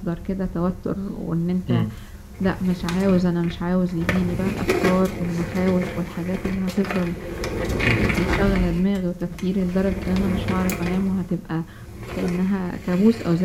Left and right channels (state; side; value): identical; both; correlation 1.00